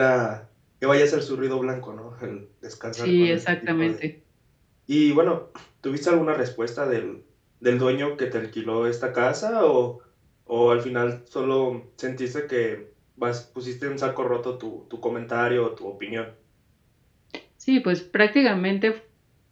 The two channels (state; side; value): identical; both; correlation 1.00